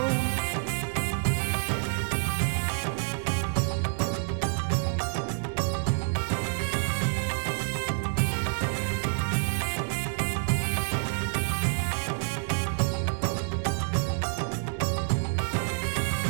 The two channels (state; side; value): silent; left; 59 dB below the other